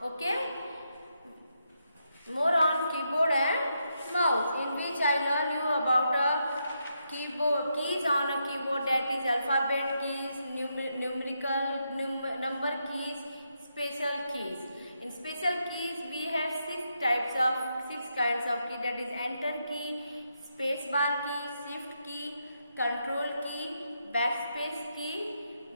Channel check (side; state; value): both; inverted; correlation -0.81